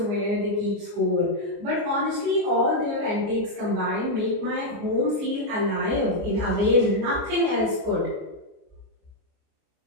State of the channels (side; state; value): left; late; 29 ms